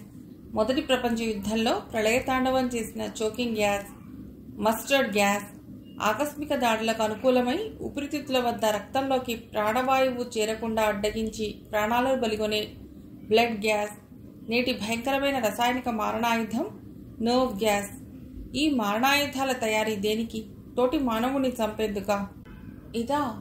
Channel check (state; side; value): identical; both; correlation 1.00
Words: మొదటి ప్రపంచ యుద్ధంలో ప్రళయతాండవం చేసిన చోకింగ్ గ్యాస్, మస్టర్డ్ గ్యాస్, ఆకస్మిక దాడులకు అనుకూలమై ఊపిరితిత్తుల వద్ద రక్తంలోకి ప్రాణవాయువు చేరకుండా అడ్డగించి ప్రాణాలను బలిగొనే బ్లడ్ గ్యాస్, నేటి భయంకరమైన రసాయనిక మారణాయుధం నర్వ్ గ్యాస్. ఈ మారణాయుధాల తయారీ దేనికి? తోటి మానవుని చంపేందుకా? ఇదా